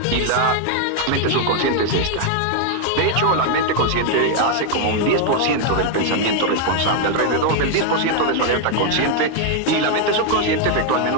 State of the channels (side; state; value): both; different; correlation 0.00